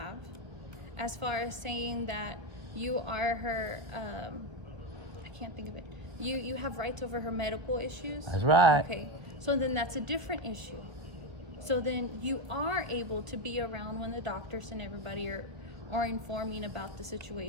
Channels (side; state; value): left; late; 1.3 ms